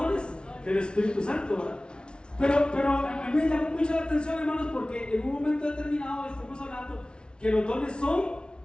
del Espíritu Santo, ¿verdad? Pero a mí me llamó mucho la atención, hermanos, porque en un momento determinado estamos hablando que los dones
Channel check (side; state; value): right; late; 0.056 ms